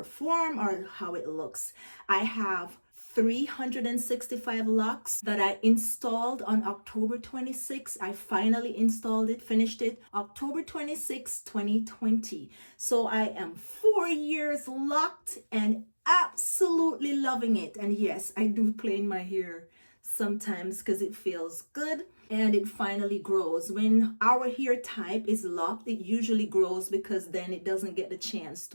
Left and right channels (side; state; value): both; inverted; correlation -1.00